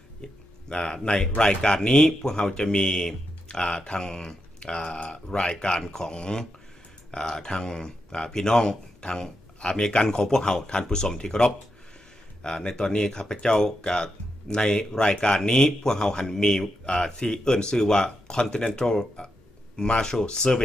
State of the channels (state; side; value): normal; both; correlation 0.85